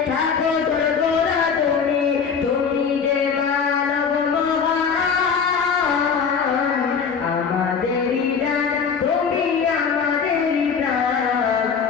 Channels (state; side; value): quieter; right; 6.2 dB